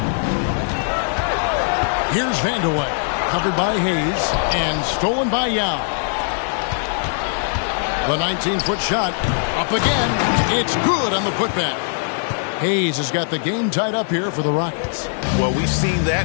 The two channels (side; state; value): right; silent; digital silence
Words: Here's Vandeweghe. Covered by Hayes and stolen by Yao. The 19-foot shot up again. It's good on the putback. Hayes has got the game tied up here for the Rockets. Well, we've seen